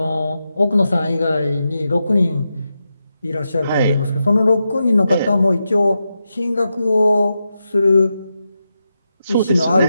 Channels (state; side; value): inverted; both; correlation -0.88